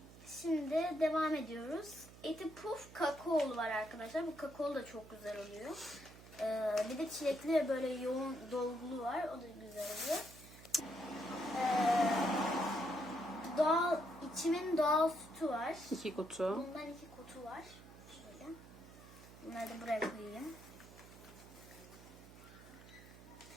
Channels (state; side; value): noise; right; hum, 18 dB below the sound